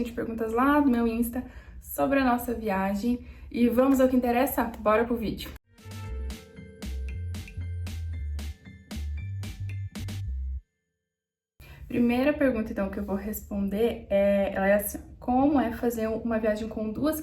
de perguntas lá do meu Insta sobre a nossa viagem e vamos ao que interessa? Bora pro vídeo! Primeira pergunta, então, que eu vou responder ela é assim: como é fazer uma viagem com duas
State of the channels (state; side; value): identical; both; correlation 1.00